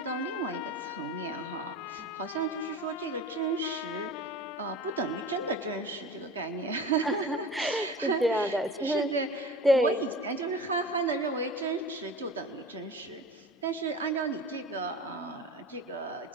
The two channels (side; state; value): both; normal; correlation 0.35